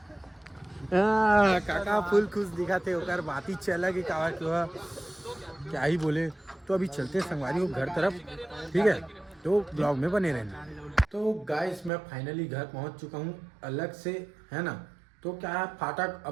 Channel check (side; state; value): left; drops out; at 11.9 s